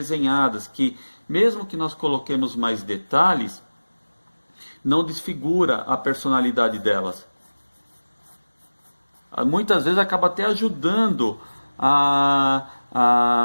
que mesmo que nós coloquemos mais detalhes, não desfigura a personalidade delas. Muitas vezes acaba até ajudando a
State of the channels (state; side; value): inverted; both; correlation -1.00